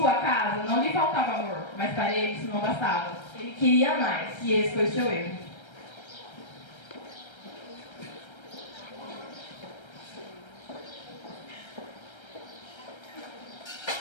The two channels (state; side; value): late; right; 1.3 ms